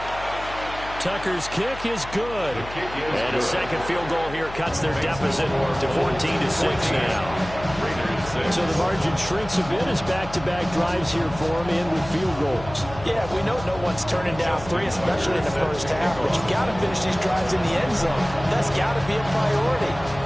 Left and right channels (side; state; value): left; noise; hum, 14 dB below the sound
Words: Tucker's kick is good. And a second field goal here cuts their deficit to 14-6 now. So the margin shrinks a bit as back-to-back drives here for him in with field goals. Yeah, we know no one's turning down 3, especially in the first half, but you got to finish these drives in the end zone. That's got to be a priority.